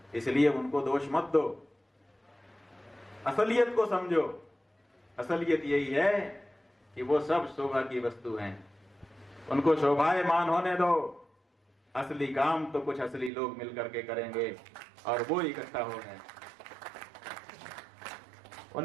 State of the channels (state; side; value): drops out; left; at 13.3 s